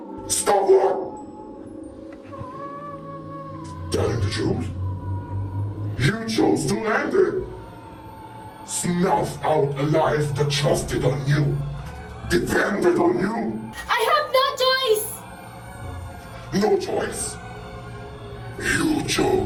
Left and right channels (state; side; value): identical; both; correlation 1.00